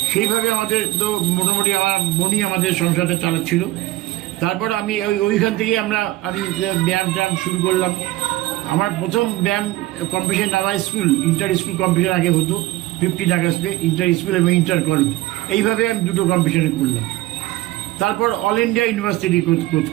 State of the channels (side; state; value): left; quieter; 17.5 dB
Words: সেইভাবে আমাদের তো মোটামুটি আমার বোনই আমাদের সংসারটা চালাচ্ছিল। তারপর আমি ওইখান থেকেই আমি ব্যায়াম ট্যায়াম শুরু করলাম। আমার প্রথম ব্যায়াম কম্পিটিশন আমার ইন্টার স্কুল কম্পিটিশন আগে হতো 15 আগস্টে, ইন্টার স্কুল এবং ইন্টার কলেজ। এইভাবে আমি দুটো কম্পিটিশনে করলাম। তারপর অল ইন্ডিয়া ইউনিভার্সিটি